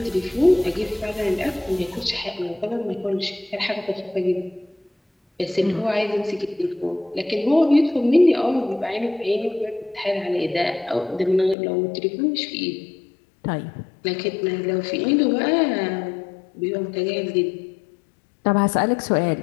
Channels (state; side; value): drops out; right; at 11.6 s